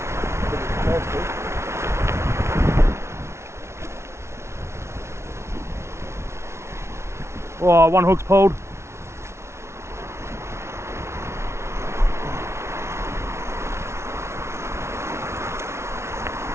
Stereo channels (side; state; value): left; late; 0.13 ms